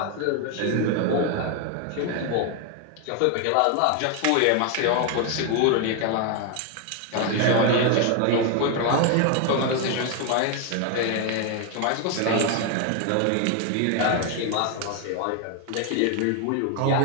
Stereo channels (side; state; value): both; different; correlation 0.01